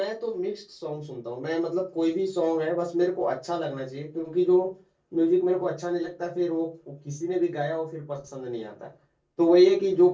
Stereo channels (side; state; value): both; identical; correlation 1.00